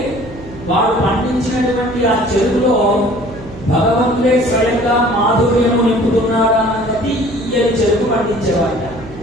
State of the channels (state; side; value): noise; right; hum, 17 dB below the sound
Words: వాడు పండించినటువంటి ఆ చెరుకులో భగవంతుడే స్వయంగా మాధుర్యము నింపుతున్నాడు అన్నది ఈ చెరుకు పండించేవాడు.